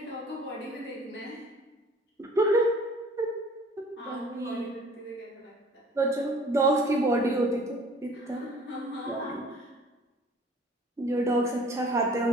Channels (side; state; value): both; normal; correlation 0.50